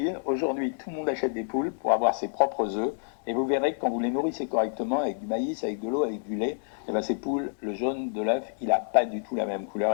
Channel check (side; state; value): right; silent; digital silence